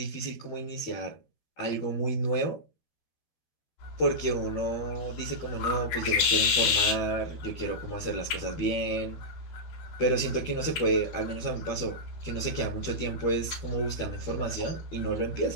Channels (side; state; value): right; late; 12 ms